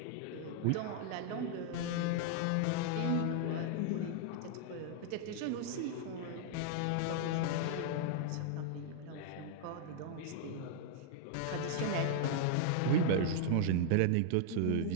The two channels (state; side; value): different; both; correlation -0.01